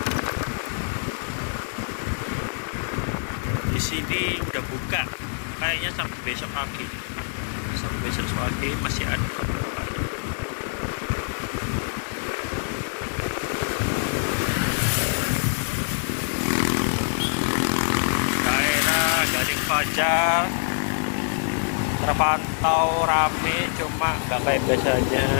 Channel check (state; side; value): silent; right; digital silence